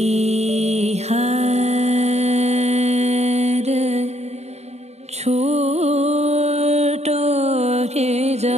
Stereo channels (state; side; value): late; left; 0.31 ms